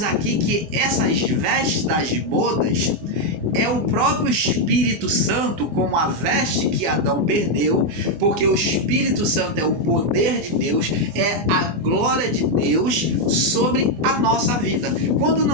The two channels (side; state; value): left; late; 25 ms